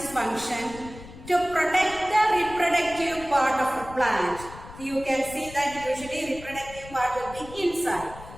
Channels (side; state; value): left; noise; rumble, 16 dB below the sound